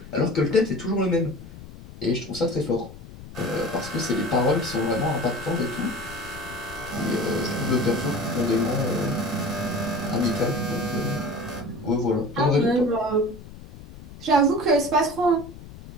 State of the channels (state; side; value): noise; left; rumble, 16 dB below the sound